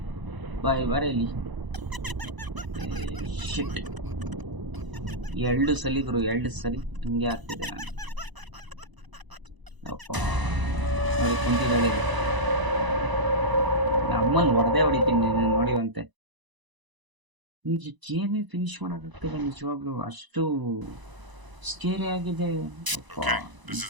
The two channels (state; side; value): late; left; 1.0 ms